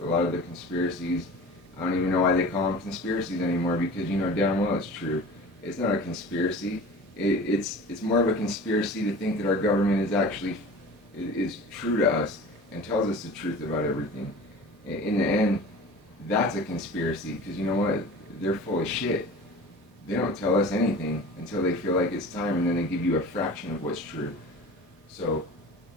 a lot of the conspiracies. I don't even know why they call them conspiracies anymore, because you know damn well it's true. It's not a conspiracy. It's more of a conspiracy to think that our government is actually is true to us and tells us the truth about everything. In the end, that's a conspiracy, because you know what? They're full of shit. They don't tell us anything until they feel like it's time, and then they give you a fraction of what's true. So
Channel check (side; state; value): both; normal; correlation 0.38